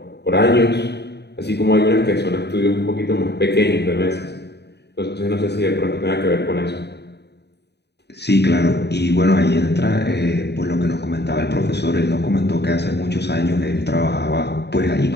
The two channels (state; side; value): late; right; 0.49 ms